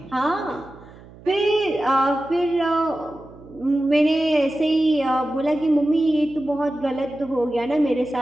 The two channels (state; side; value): noise; right; hum, 21 dB below the sound